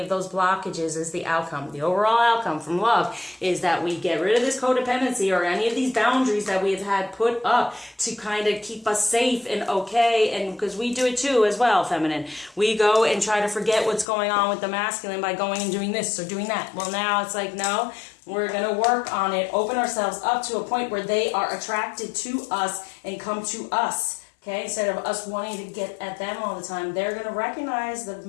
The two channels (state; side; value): drops out; right; at 14.1 s